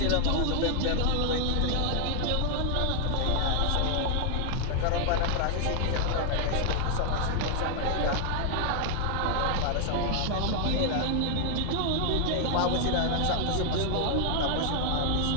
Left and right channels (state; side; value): different; both; correlation 0.00